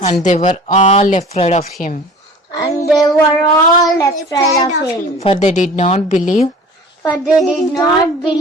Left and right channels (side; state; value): both; normal; correlation 0.43